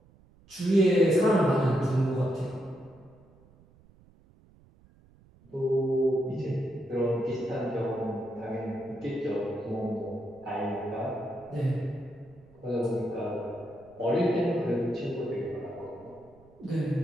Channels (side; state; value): right; noise; rumble, 27 dB below the sound